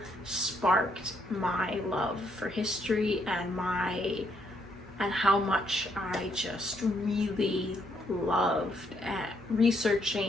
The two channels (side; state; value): both; normal; correlation 0.72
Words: sparked my love for history and how much I just really loved